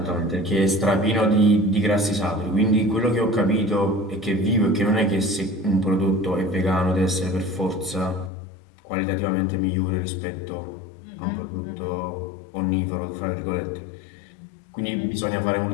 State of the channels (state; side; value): drops out; right; at 8.3 s